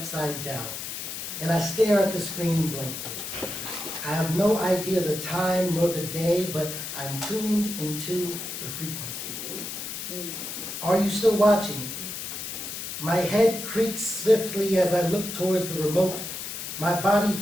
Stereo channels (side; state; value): left; noise; hiss, 7 dB below the sound